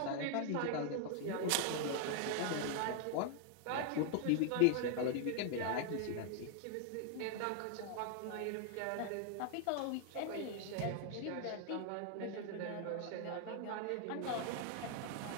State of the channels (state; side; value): different; both; correlation 0.00